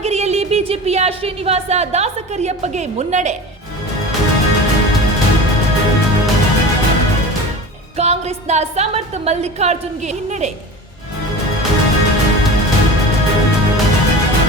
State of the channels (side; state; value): both; normal; correlation 0.34